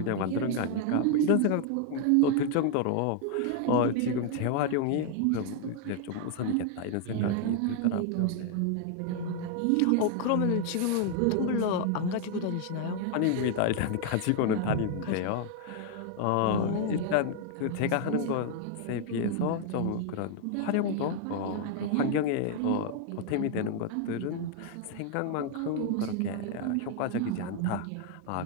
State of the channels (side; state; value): both; different; correlation 0.00